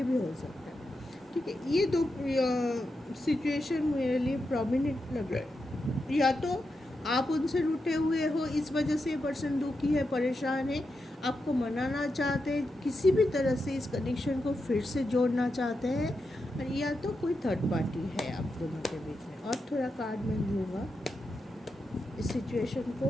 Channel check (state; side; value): normal; both; correlation 0.87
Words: भी हो सकता है, ठीक है। ये दो सिचुएशन मेरे लिए प्रोमिनेंट लग रहा है, या तो आप उनसे रूठे हुए हो, इस वजह से ये पर्सन दुखी है, परेशान है, आपको मनाना चाहते हैं, किसी भी तरह से इस कनेक्शन को फिर से जोड़ना चाहते हैं, और या तो कोई थर्ड पार्टी है आप दोनों के बीच में। और थोड़ा कार्ड में लूँगा इस सिचुएशन